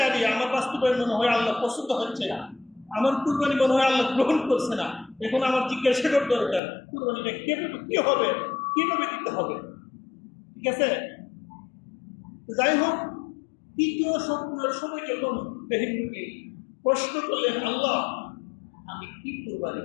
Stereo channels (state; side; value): drops out; right; at 6.6 s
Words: আরে আমার বাস্তবায়ন মনে হয় আল্লাহ পছন্দ হচ্ছে না, আমার কুরবানি মনে হয় আল্লাহ গ্রহণ করছে না, এখন আমার জিজ্ঞাসা করার দরকার কুরবানিটা কি হবে, কিভাবে দিতে হবে। ঠিক আছে, যাই হোক, তৃতীয় স্বপ্নের সময় যখন ইব্রাহিম নবী প্রশ্ন করলেন আল্লাহ আমি কি কুরবানি